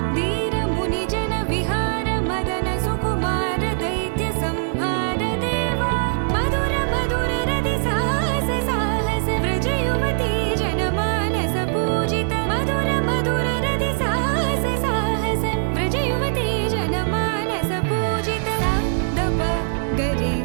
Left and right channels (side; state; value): left; silent; digital silence